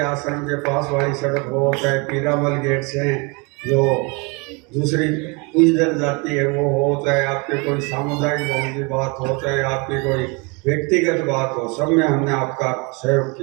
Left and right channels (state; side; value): quieter; left; 30.2 dB